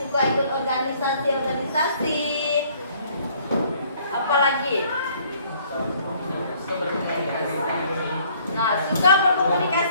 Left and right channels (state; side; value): inverted; both; correlation -0.60